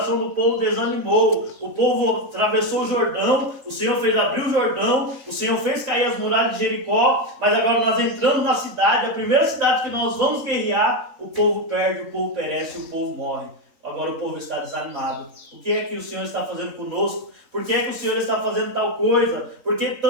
do povo desanimou, o povo atravessou o Jordão, o Senhor fez abrir o Jordão, o Senhor fez cair as muralhas de Jericó, mas agora nós entramos na cidade, a primeira cidade que nós vamos guerrear, o povo perde, o povo perece, o povo morre. Agora o povo está desanimado. O que é que o Senhor está fazendo conosco? Por que é que o Senhor está fazendo tal coisa? Por que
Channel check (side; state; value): left; late; 3.7 ms